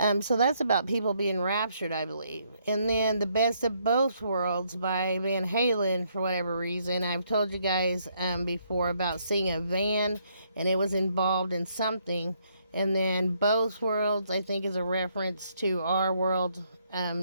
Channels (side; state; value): both; inverted; correlation -0.71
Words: So that's about people being raptured, I believe. And then The Best of Both Worlds by Van Halen, for whatever reason. I've told you guys before about seeing a van, and it was involved in something. And then Both Worlds, I think, is a reference to our world